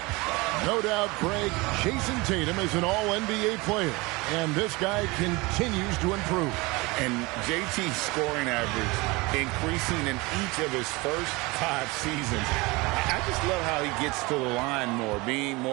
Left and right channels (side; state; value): left; quieter; 24.1 dB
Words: No doubt, Greg, Jason Tatum is an all-NBA player. And this guy continues to improve. And JT's scoring average increasing in each of his first 5 seasons. I just love how he gets to the line more, being